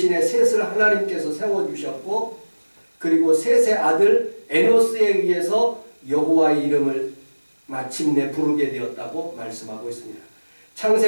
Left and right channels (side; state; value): both; inverted; correlation -1.00